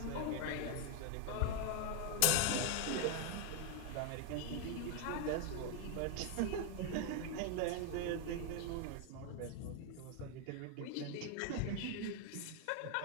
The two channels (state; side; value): different; both; correlation 0.01